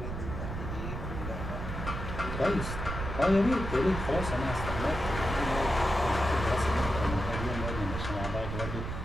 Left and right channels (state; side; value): noise; right; rumble, 5 dB below the sound